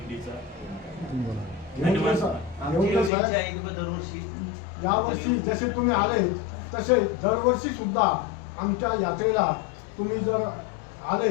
धन्यवाद. दरवर्षी यावर्षी जसे तुम्ही आले तसे दरवर्षी सुद्धा आमच्या यात्रेला तुम्ही जर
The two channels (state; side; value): drops out; right; at 3.1 s